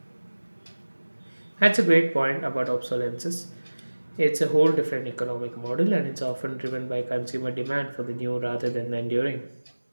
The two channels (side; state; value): both; inverted; correlation -1.00